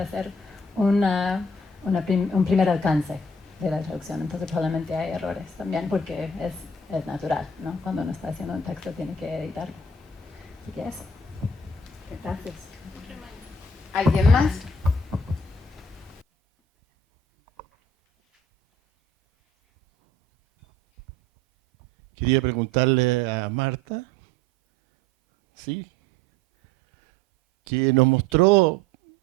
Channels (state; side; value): normal; both; correlation 0.51